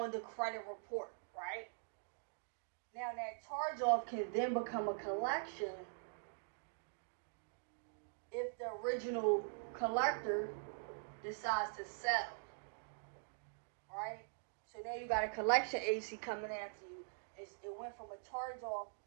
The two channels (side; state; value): left; silent; digital silence